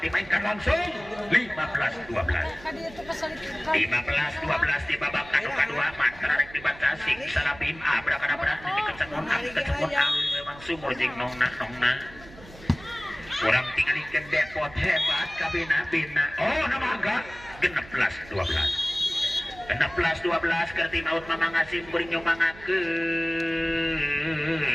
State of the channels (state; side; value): noise; right; hum, 19 dB below the sound